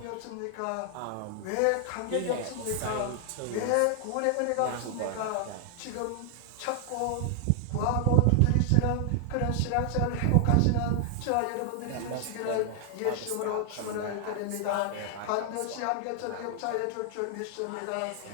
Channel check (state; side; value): different; both; correlation 0.00